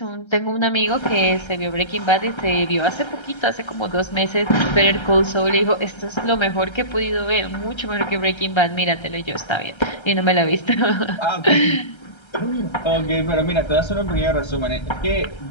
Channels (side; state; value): right; late; 1.3 ms